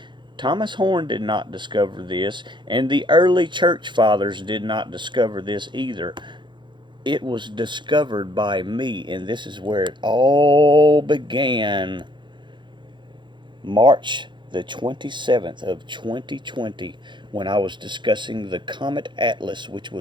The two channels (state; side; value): late; left; 0.23 ms